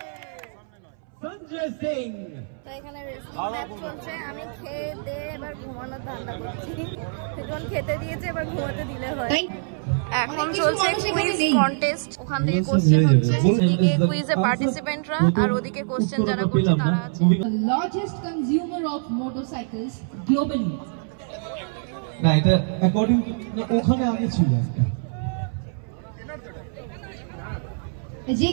Sanjay Singh. তো এখানে রেসলিং ম্যাচ চলছে, আমি খেয়ে দিয়ে এবার ঘুমানোর ধান্দা করছি। এখন খেতে দিয়েছে, এবার ঘুমাতে দিলে হয়। এখন চলছে কুইজ কন্টেস্ট, ওখান থেকে কোশ্চেন হচ্ছে, এদিকে কুইজে পার্টিসিপেন্টরা আর ওদিকে কোশ্চেন যারা করছে তারা আছে। The largest consumer of motorcycles globally. না এটা অ্যাকর্ডিং ওখানে আগে ছিল একটা। যে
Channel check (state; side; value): silent; left; 62 dB below the other